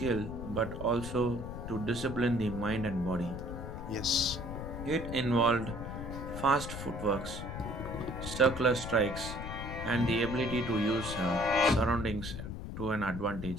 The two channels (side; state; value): left; noise; rumble, 7 dB below the sound